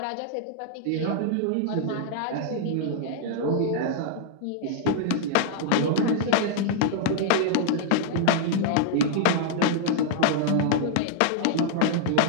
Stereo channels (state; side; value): different; both; correlation -0.01